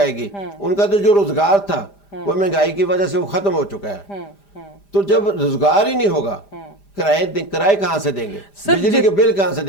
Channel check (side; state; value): right; late; 5.0 ms